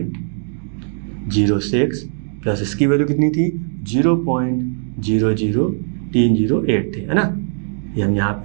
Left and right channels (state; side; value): silent; left; digital silence